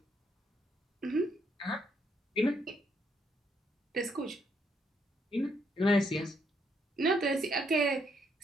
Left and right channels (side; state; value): both; normal; correlation 0.74